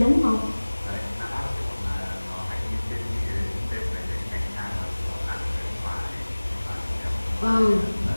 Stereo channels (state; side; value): inverted; both; correlation -1.00